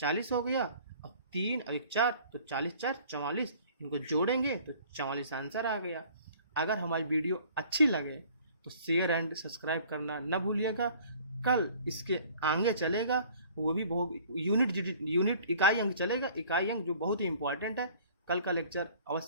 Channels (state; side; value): inverted; both; correlation -0.52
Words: हो गया, और 3 और 1 4, तो 40 4 44, इनको जोड़ेंगे तो 44 आंसर आ गया। अगर हमारी वीडियो अच्छी लगे तो शेयर एंड सब्सक्राइब करना न भूलिएगा। कल इसके आगे चलेगा, वो भी बहुत यूनिट इकाई अंक चलेगा, इकाई अंक जो बहुत ही इंपॉर्टेंट है। कल का लेक्चर